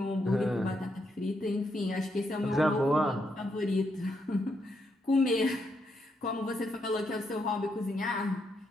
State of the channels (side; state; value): both; normal; correlation 0.79